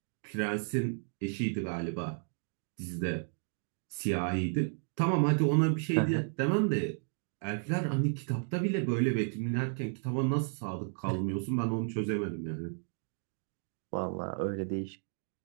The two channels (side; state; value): left; silent; 56 dB below the other